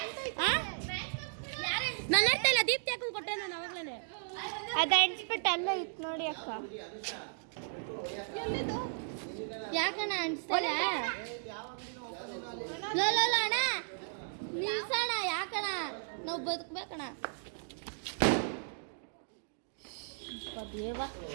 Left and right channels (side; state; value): left; silent; digital silence